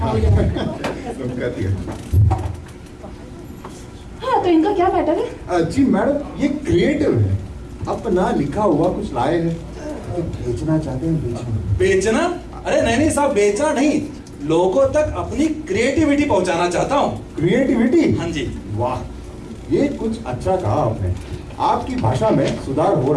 तो इनका क्या मैटर है? जी मैडम, ये क्रिएटिव है, अपना लिखा हुआ कुछ लाए हैं, बेचना चाहते हैं। बेचना? अरे नहीं साहब, बेचना नहीं, लोगों तक अपनी क्रिएटिविटी पहुंचाना चाहता हूँ। क्रिएटिविटी? हाँ जी। वाह, ये कुछ अच्छा कहा आपने। आपकी भाषा में सुधार हो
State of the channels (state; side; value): identical; both; correlation 1.00